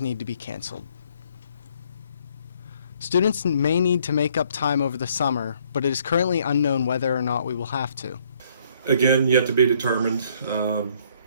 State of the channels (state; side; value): inverted; both; correlation -0.66